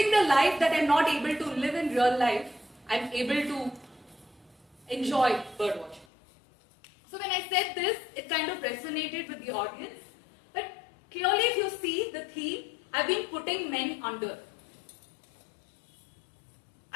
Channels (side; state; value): right; drops out; at 6.1 s